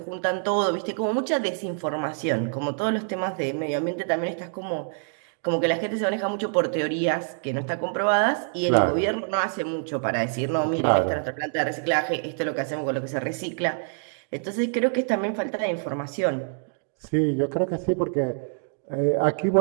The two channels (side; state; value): left; silent; 61 dB below the other